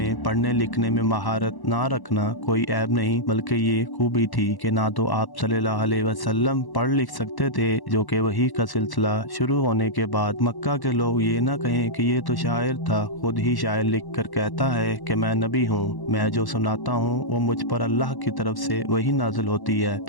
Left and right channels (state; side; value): late; right; 1.1 ms